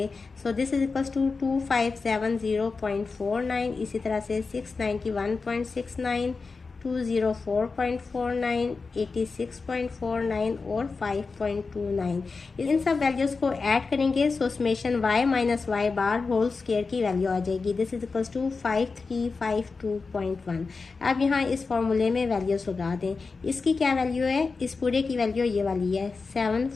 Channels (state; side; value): quieter; right; 4.4 dB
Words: So this is equals to 2570.49। इसी तरह से 691.69, 204.49, 86.49 और 5.29। इन सब वैल्यूज़ को ऐड करेंगे so summation y minus Y bar whole square की वैल्यू आ जाएगी। This is equals to 5352.1। अब यहाँ इस फॉर्मूले में वैल्यूज़ लगा दें। इसकी क्या वैल्यू है, इस पूरे की वैल्यू ये वाली है